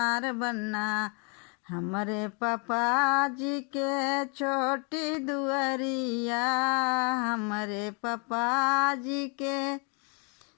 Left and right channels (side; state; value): right; quieter; 35.6 dB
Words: बन्ना। हमारे पापा जी के छोटी दुआरिया, हमारे पापा जी के